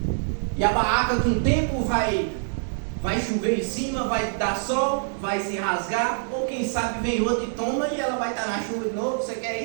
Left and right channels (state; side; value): silent; left; 62 dB below the other